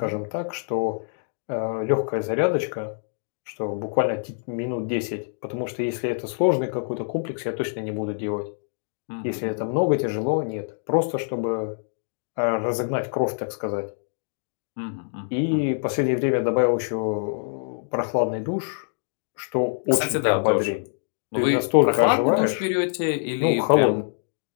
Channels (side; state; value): right; silent; digital silence